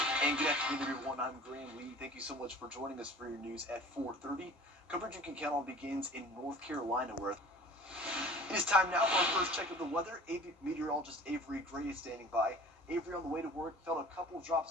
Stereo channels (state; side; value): normal; both; correlation 0.44